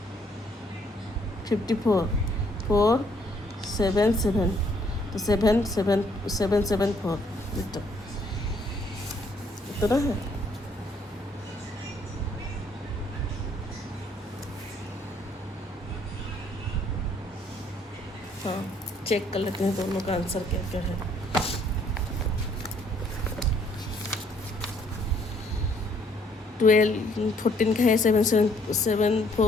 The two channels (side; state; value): both; normal; correlation 0.66